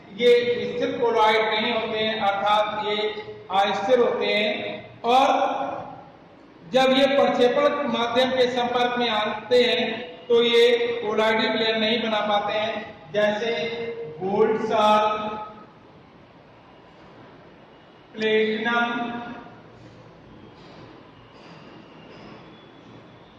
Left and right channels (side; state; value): both; identical; correlation 1.00